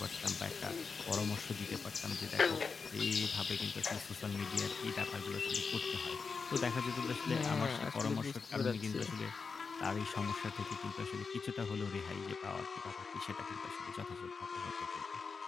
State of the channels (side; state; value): right; quieter; 5.1 dB